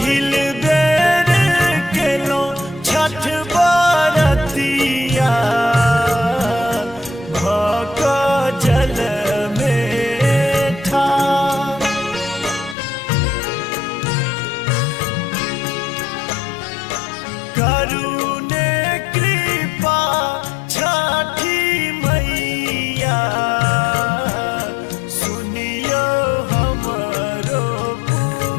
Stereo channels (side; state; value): right; drops out; at 12.8 s